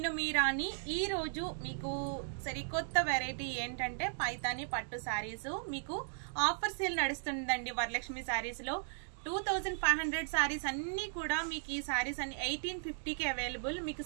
మీ రాణి. ఈ రోజు మీకు సరికొత్త వెరైటీ ఏంటంటే పైతాని పట్టు సారీస్ మీకు ఆఫర్ సేల్ నడుస్తుందండి వరలక్ష్మి సారీస్ లో. 2500 సారీస్ అన్ని కూడా మీకు ఈ సారీస్ అన్ని 1850కి అవైలబుల్. మీకు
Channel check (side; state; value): left; silent; digital silence